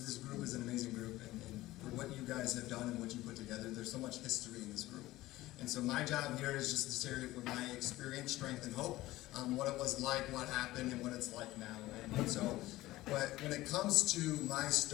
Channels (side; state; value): right; quieter; 17.3 dB